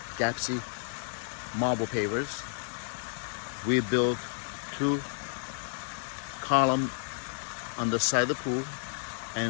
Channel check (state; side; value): silent; right; digital silence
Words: Gapsy marble pavers. We built 2 columns on the side of the pool